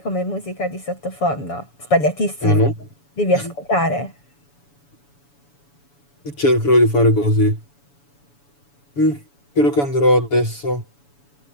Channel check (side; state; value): right; late; 7.0 ms